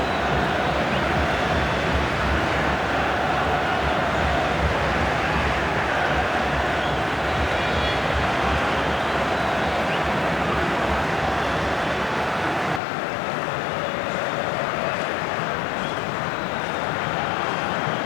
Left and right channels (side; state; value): right; drops out; at 12.8 s